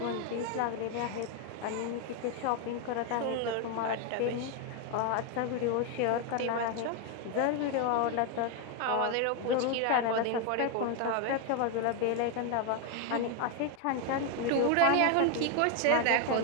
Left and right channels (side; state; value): both; different; correlation 0.01